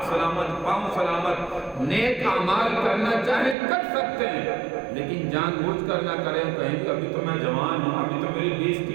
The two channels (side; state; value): left; drops out; at 3.6 s